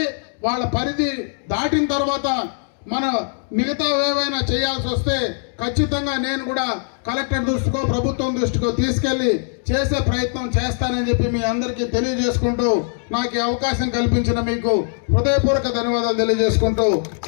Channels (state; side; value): silent; right; 65 dB below the other